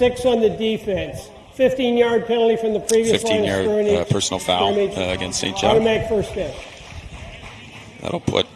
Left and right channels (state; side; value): identical; both; correlation 1.00